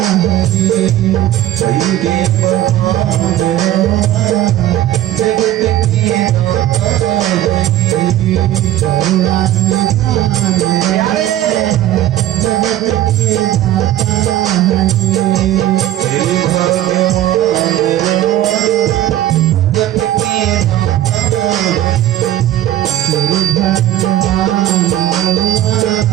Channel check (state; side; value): quieter; left; 13.3 dB